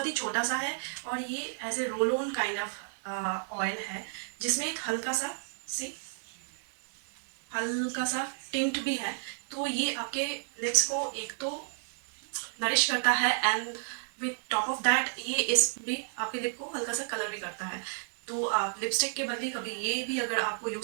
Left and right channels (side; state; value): left; silent; 57 dB below the other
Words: ही छोटा सा है और ये ऐसे roll on kind of oil है जिसमें एक हल्का सा टिंट भी है. तो ये आपके लिप्स को एक तो नरिश करता है and with top of that ये इस भी आपके लिप को हल्का सा कलर भी करता है. तो आप लिपस्टिक के बदले कभी ये भी अगर आपको